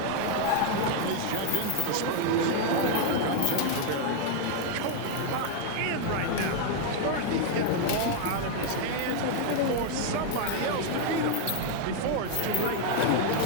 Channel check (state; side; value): different; both; correlation 0.00